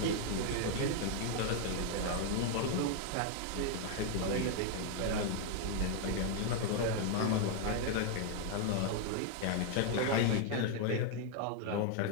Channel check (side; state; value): both; different; correlation 0.00